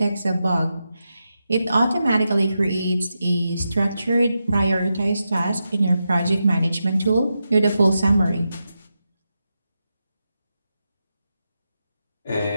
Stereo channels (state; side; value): inverted; both; correlation -0.88